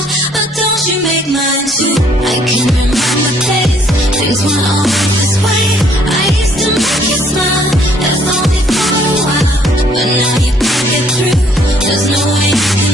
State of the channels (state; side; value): normal; both; correlation 0.63